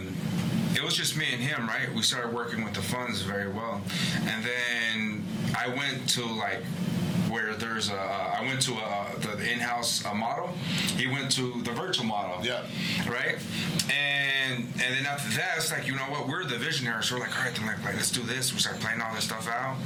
it was just me and him, right? We started working with the funds very well. And then I went to where there's I went to the in-house model. He went to the virtual model. Yeah. Right? And then after that, it's like, you know what? We're the visionaries. So we're like, all right, then let's do this. We start playing all this stuff out.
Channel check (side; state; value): both; identical; correlation 1.00